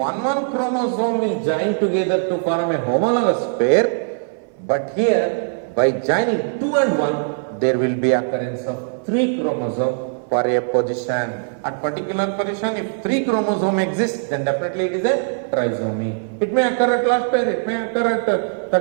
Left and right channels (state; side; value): silent; left; 59 dB below the other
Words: chromosome will join together to form a homologous pair. But here, by joining 2 and 1, there will be occurrence of 3 chromosomes for a position. At particular position, if 3 chromosomes exist, then definitely it is a trisomy. It may occur at last pair, it may occur at